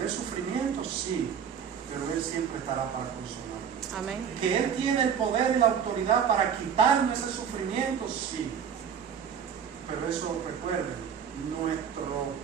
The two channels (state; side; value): quieter; left; 7.7 dB